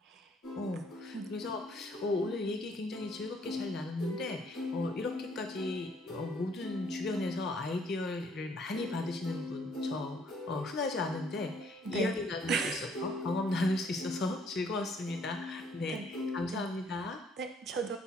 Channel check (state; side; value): normal; both; correlation 0.64